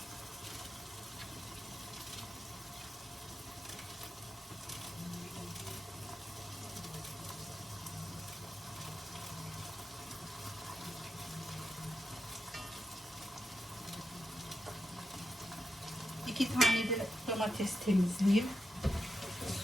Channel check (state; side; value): normal; both; correlation 0.88